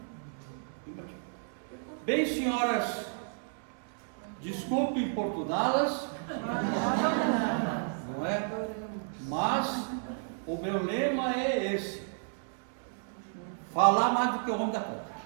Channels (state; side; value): silent; left; digital silence